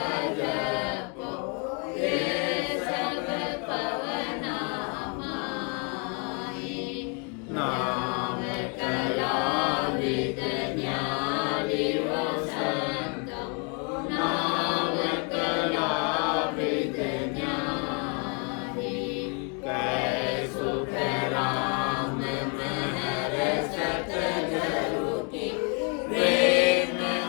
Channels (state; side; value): quieter; right; 36.5 dB